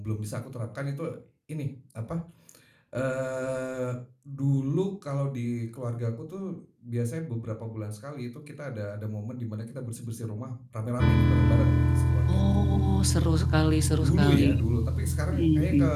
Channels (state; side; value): identical; both; correlation 1.00